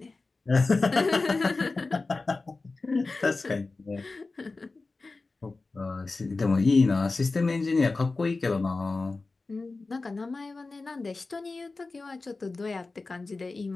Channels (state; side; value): quieter; right; 3.6 dB